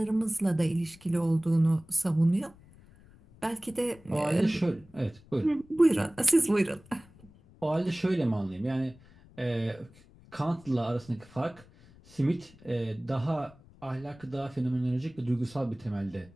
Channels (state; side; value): noise; left; rumble, 25 dB below the sound